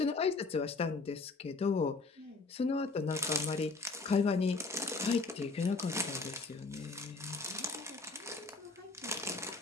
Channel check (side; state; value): right; quieter; 3.7 dB